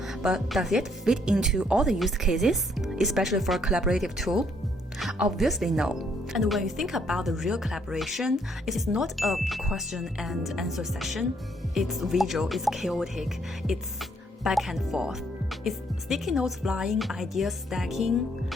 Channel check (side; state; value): both; normal; correlation 0.69